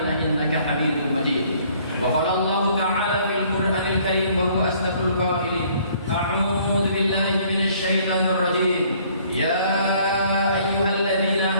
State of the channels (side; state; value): both; inverted; correlation -0.60